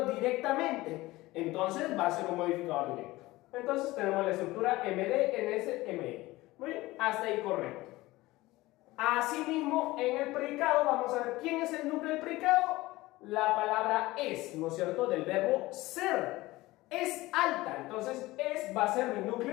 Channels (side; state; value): right; quieter; 19.1 dB